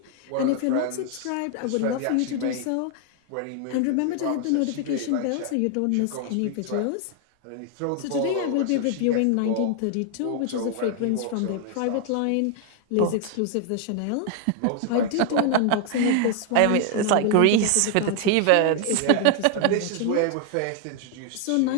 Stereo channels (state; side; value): different; both; correlation 0.00